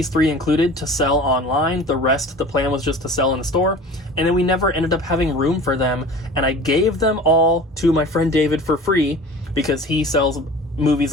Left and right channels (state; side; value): normal; both; correlation 0.40